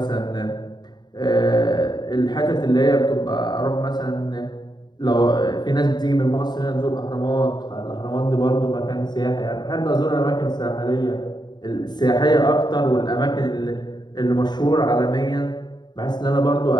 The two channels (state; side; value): late; right; 0.21 ms